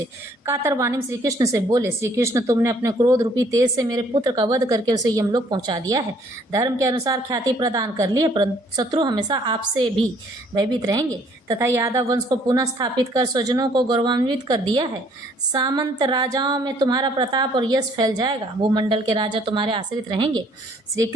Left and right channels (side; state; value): both; normal; correlation 0.62